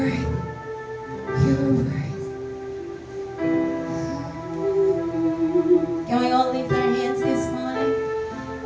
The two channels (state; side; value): identical; both; correlation 1.00